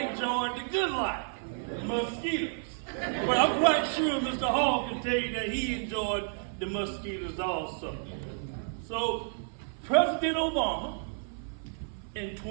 the good life, the mosquitoes. But I'm quite sure Mr. Hall can tell you that he enjoyed the mosquitoes also. So President Obama, in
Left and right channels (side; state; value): left; silent; 57 dB below the other